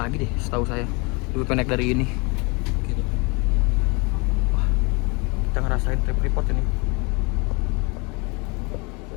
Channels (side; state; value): right; quieter; 29.2 dB